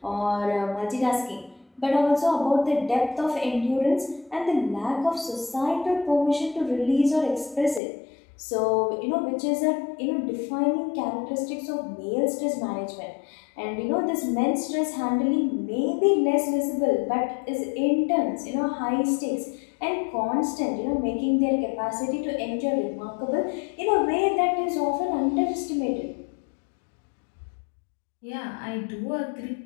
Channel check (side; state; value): right; drops out; at 7.8 s